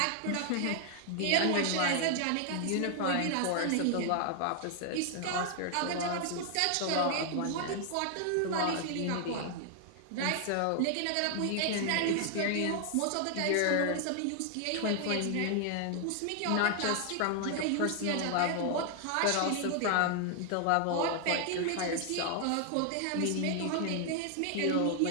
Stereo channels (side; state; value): both; different; correlation 0.00